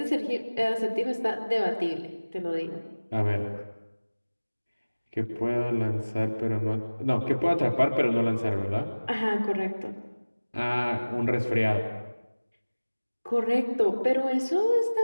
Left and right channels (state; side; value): inverted; both; correlation -1.00